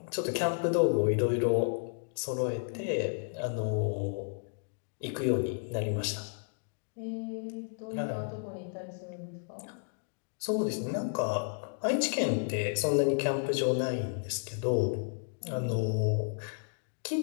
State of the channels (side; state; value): right; silent; digital silence